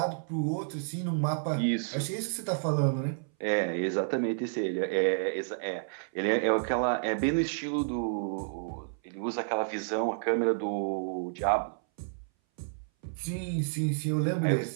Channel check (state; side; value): silent; left; 57 dB below the other